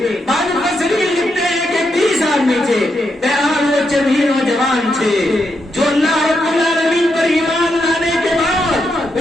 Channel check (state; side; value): normal; both; correlation 0.82